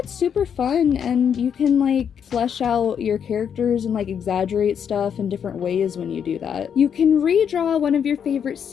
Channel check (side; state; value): right; quieter; 7.9 dB